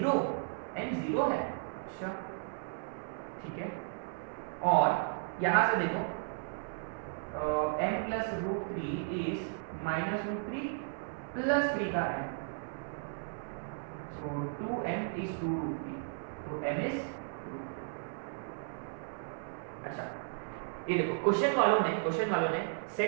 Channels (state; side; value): silent; left; 54 dB below the other